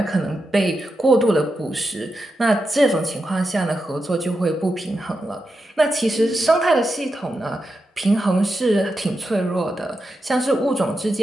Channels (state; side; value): normal; both; correlation 0.88